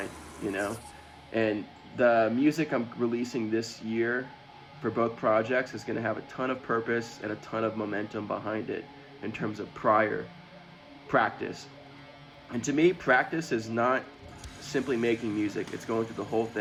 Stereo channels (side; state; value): both; identical; correlation 1.00